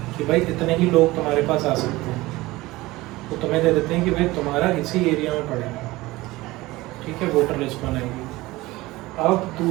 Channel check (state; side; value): quieter; left; 19.6 dB